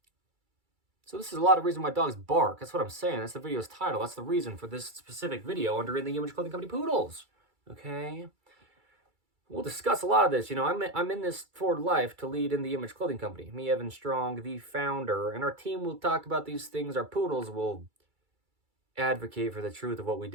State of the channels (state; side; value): late; left; 2.3 ms